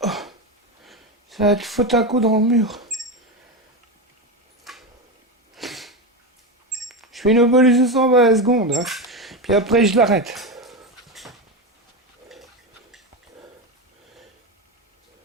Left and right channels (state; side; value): normal; both; correlation 0.16